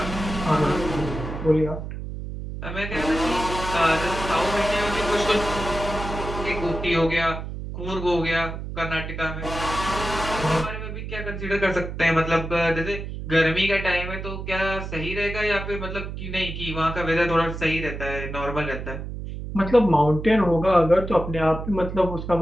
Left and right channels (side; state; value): right; noise; hum, 7 dB below the sound